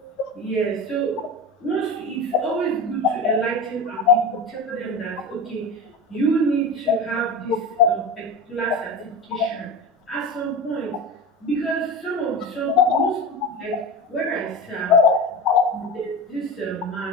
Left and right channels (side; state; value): both; normal; correlation 0.27